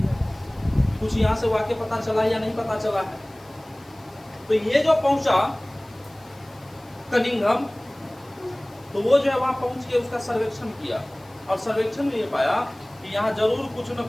कुछ यहाँ से वाकई पता चला या नहीं पता चला है। तो ये जो पहुंचा कनिंघम, तो वो जो है वहां पहुंच के उसका सर्वेक्षण किया, और सर्वेक्षण में ये पाया कि यहाँ जरूर कुछ न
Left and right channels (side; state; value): left; noise; hiss, 28 dB below the sound